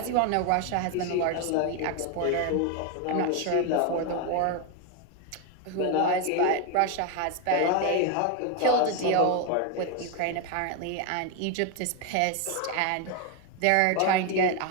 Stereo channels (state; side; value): different; both; correlation 0.01